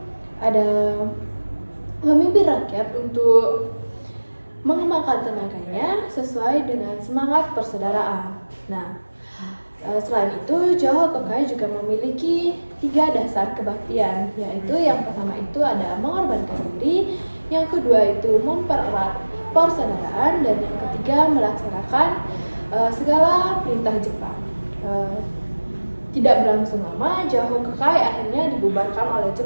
ada memimpin rakyat untuk mengembangkan tenaganya sesuai dengan semangat persaudaraan. Nah, selain itu Jahokokai juga memiliki 3 dasar kebaktian, yaitu yang pertama itu ada mengorbankan diri, yang kedua itu mempererat persaudaraan, dan yang ketiga melaksanakan segala perintah Jepang. Tidak berlangsung lama, Jahokokai akhirnya dibubarkan oleh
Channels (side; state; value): both; inverted; correlation -1.00